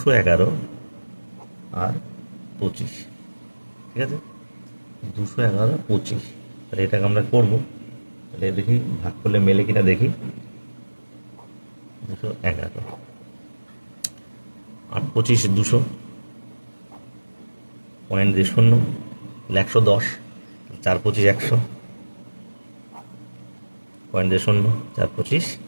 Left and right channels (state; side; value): inverted; both; correlation -1.00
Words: আর 25। ঠিক আছে, 211 25। তাহলে এটাকে আমরা করবো, তাহলে দেখি ভাগ করলে মেলে কিনা দেখি। 211 8 25 200, পয়েন্ট দিয়ে 0, 110, 4 25 100, পয়েন্ট দিয়ে 0, 4 25